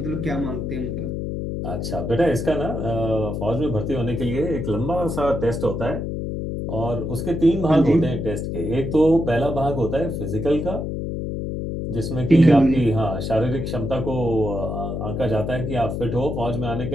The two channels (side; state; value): left; noise; hum, 3 dB below the sound